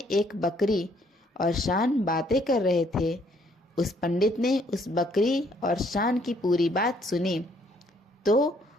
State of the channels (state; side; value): normal; both; correlation 0.66